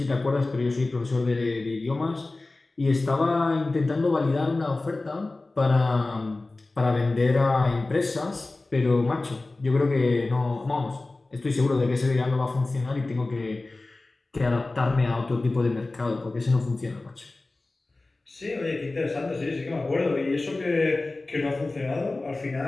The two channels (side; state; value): right; quieter; 3.2 dB